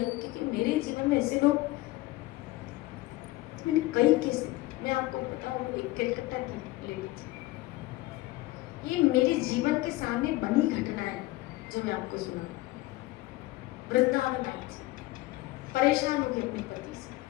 क्योंकि मेरे जीवन में ऐसे लोग मैंने कई केस, मैं आपको बताऊं, एक कलकत्ता की लेडी थी, ये मेरे जीवन के सामने बनी घटना है जो मैं आपको सुना। वृंदावन आई थी, परेशान हो गई अपने पति से,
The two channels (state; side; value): quieter; right; 19.0 dB